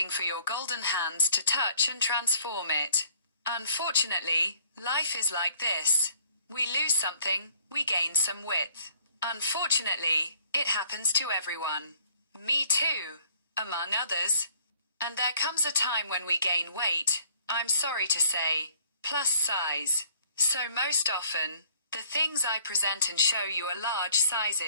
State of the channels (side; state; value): both; inverted; correlation -0.59